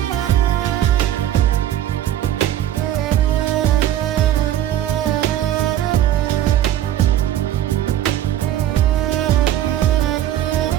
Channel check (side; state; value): left; quieter; 11.9 dB